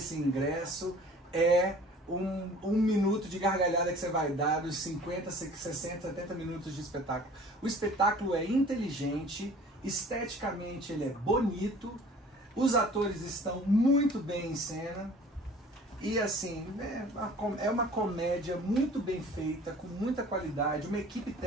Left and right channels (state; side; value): normal; both; correlation 0.48